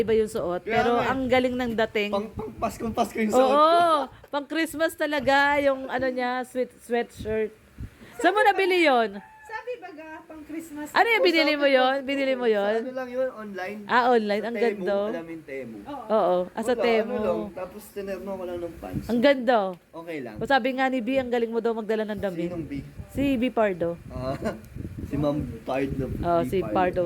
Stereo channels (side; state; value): both; identical; correlation 1.00